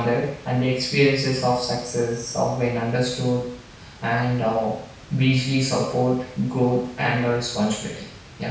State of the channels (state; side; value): identical; both; correlation 1.00